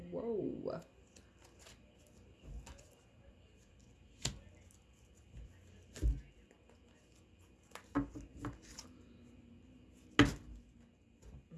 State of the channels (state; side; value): identical; both; correlation 1.00